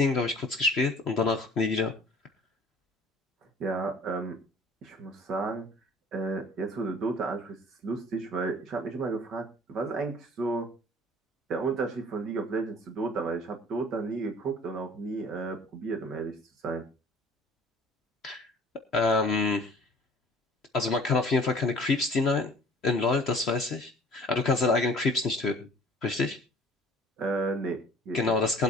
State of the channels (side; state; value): both; normal; correlation 0.50